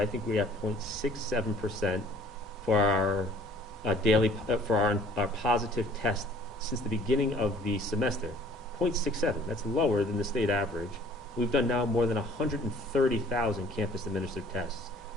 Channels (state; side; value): normal; both; correlation 0.53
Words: think we're at 0.67% for our daily, for our positive test since the beginning of the semester. 0.67, that's lower than the state average. We've done now more than 130,000 campus-administered tests.